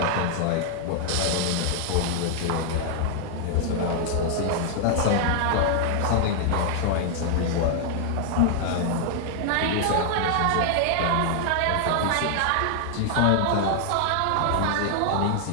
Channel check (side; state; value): both; different; correlation 0.00